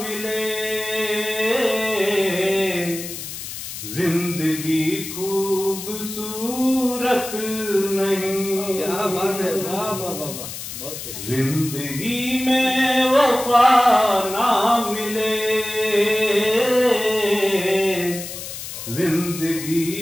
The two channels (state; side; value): noise; left; hiss, 9 dB below the sound